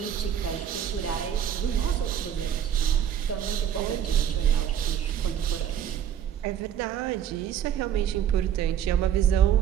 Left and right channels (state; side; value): quieter; left; 9.6 dB